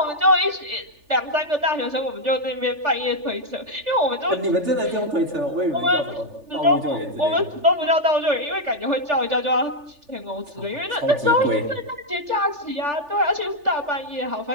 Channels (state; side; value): late; left; 3.4 ms